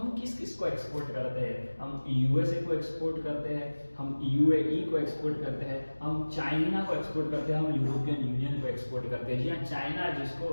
किस किस को एक्सपोर्ट करते हैं? हम यूएसए को एक्सपोर्ट करते हैं, हम यूएई को एक्सपोर्ट करते हैं, हम चाइना को एक्सपोर्ट करते हैं, हम यूरोपियन यूनियन को एक्सपोर्ट करते हैं। जी हाँ, चाइना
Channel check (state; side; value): inverted; both; correlation -1.00